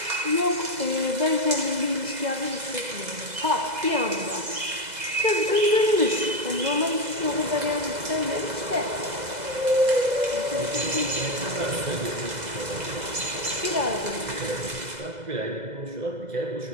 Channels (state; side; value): late; left; 2.0 ms